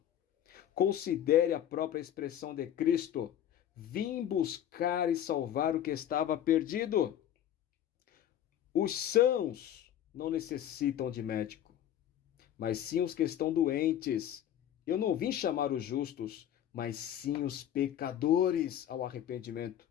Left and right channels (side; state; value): right; quieter; 10.8 dB